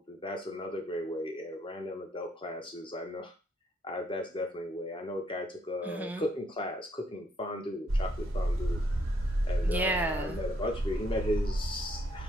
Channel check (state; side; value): normal; both; correlation 0.71